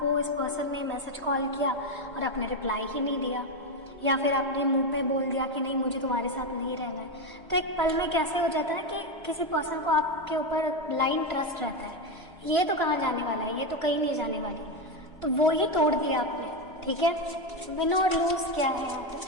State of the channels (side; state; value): both; normal; correlation 0.10